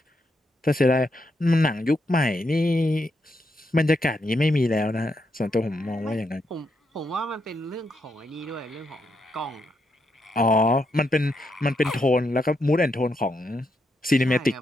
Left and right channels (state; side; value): normal; both; correlation 0.81